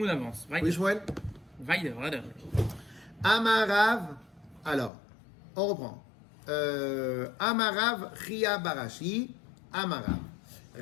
avance. Oui, Shmuel? Weiter. Amarav, alors, on reprend. Amarav Chia Barashi, Amarav.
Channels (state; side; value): drops out; right; at 4.9 s